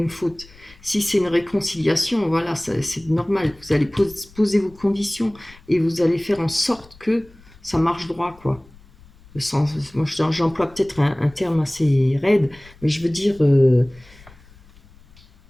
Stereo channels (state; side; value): noise; left; rumble, 25 dB below the sound